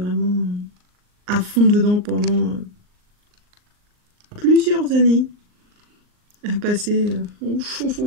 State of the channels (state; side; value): late; left; 39 ms